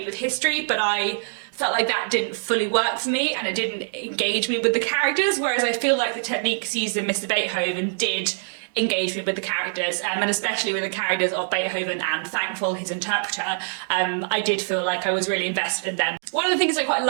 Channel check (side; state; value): left; silent; digital silence